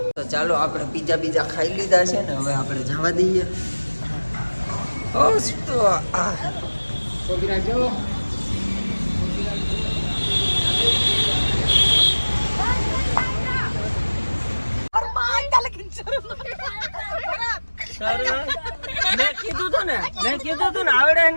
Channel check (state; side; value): inverted; both; correlation -1.00